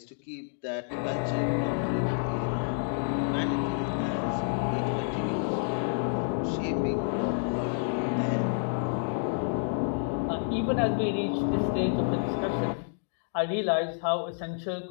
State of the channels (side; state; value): right; silent; digital silence